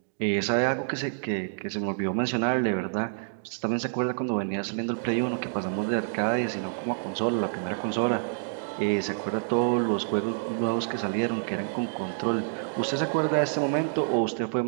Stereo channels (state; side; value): silent; left; digital silence